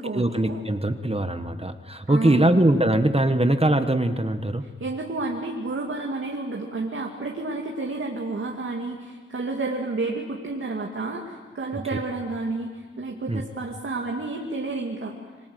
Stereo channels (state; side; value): normal; both; correlation 0.69